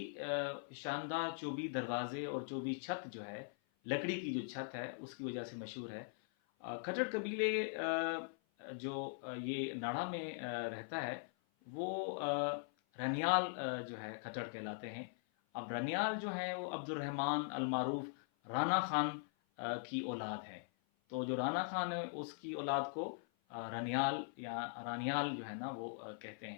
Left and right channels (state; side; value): silent; right; 50 dB below the other